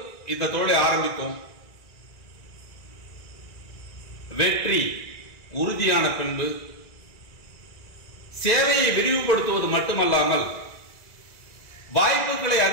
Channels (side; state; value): right; late; 1.9 ms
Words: இந்த தொழிலை ஆரம்பித்தோம். வெற்றி உறுதியான பின்பு சேவையை விரிவுபடுத்துவது மட்டுமல்லாமல் வாய்ப்புகளை